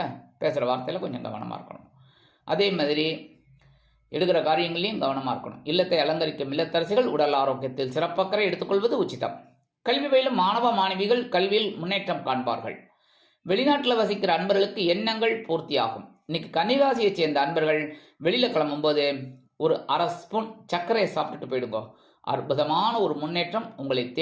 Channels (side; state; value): both; identical; correlation 1.00